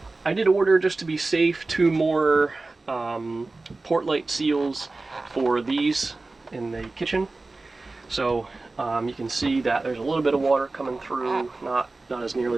I did order, just to be safe, 2 more port light seals for these in the kitchen. So you can see that there's a little bit of water coming through, not as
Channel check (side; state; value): left; quieter; 3.4 dB